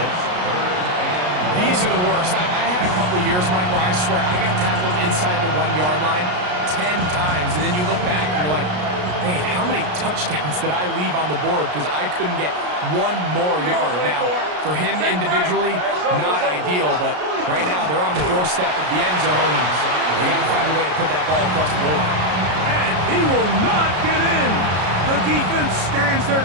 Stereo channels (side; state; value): left; late; 33 ms